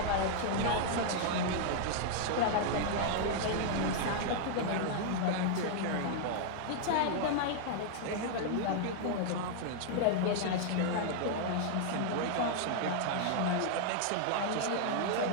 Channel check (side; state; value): both; different; correlation -0.01